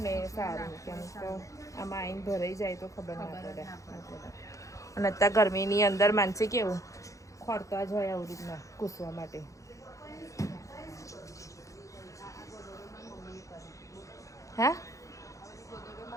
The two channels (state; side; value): late; right; 0.15 ms